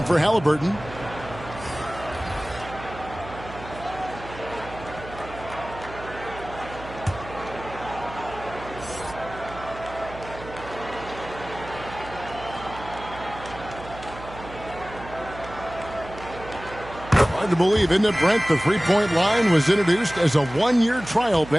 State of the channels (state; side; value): noise; right; hum, 14 dB below the sound